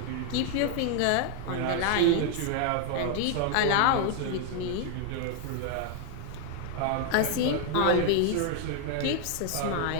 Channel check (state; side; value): different; both; correlation 0.00